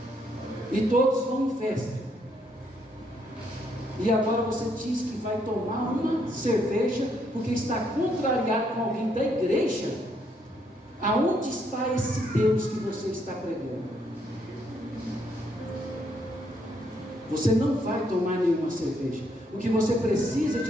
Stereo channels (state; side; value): normal; both; correlation 0.73